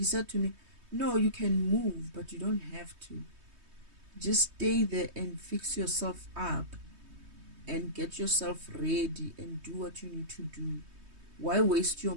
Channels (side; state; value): left; late; 3.2 ms